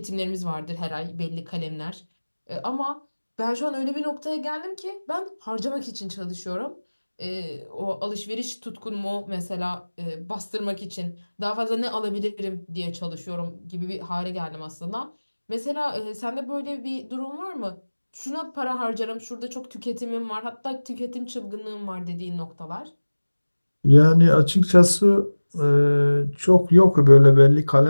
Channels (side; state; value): both; inverted; correlation -1.00